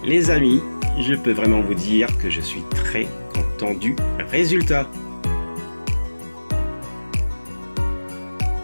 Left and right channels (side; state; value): both; inverted; correlation -1.00